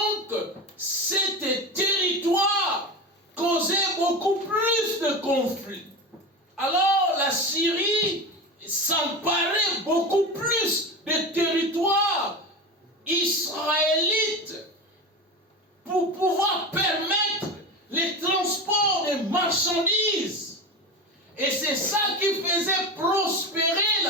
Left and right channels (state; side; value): normal; both; correlation 0.24